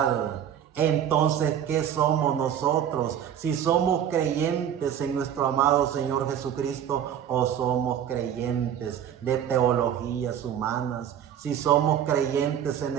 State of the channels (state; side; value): quieter; left; 9.6 dB